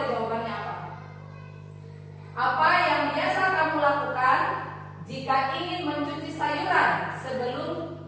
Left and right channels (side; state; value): both; identical; correlation 1.00